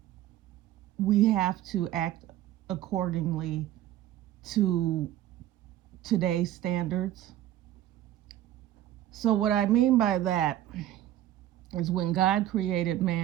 we have to act accordingly to today's standards. So, what I mean by that is when God created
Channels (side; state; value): left; quieter; 12.9 dB